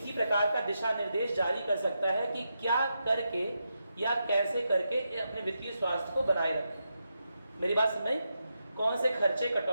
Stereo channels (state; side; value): inverted; both; correlation -0.86